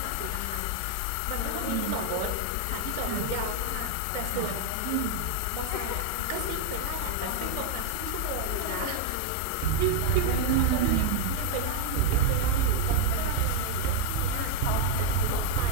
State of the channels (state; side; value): different; both; correlation 0.00